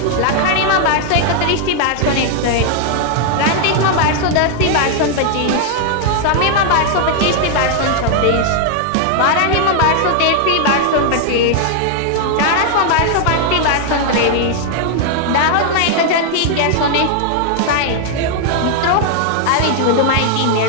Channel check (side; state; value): both; different; correlation 0.00